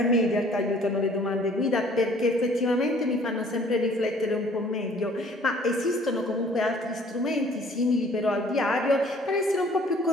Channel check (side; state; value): both; normal; correlation 0.56